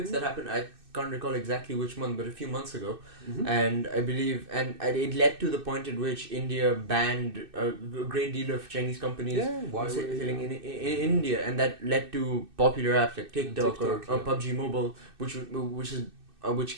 that happened. I can't recall exactly which month, but a few months ago. And I believe, and it led to the point at which India banned a great deal of Chinese companies selling in India, and that led to popular apps like TikTok or PUBG Mobile, which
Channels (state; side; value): late; left; 2.6 ms